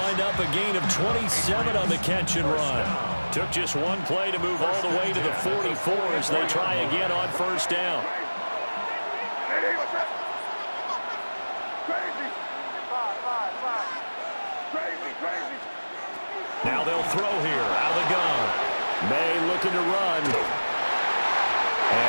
wind up a gain of 27 on the catch and run. Took just one play to move all the way to the 44 as they try again on first down. Now they'll throw here out of the gun. May looking to run.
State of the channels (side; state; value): both; inverted; correlation -1.00